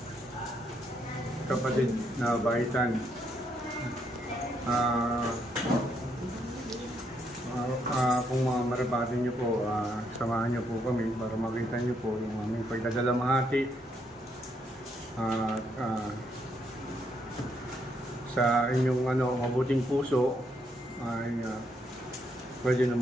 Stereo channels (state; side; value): normal; both; correlation 0.75